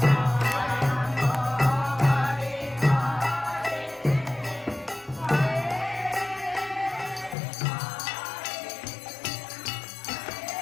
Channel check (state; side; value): drops out; right; at 7.4 s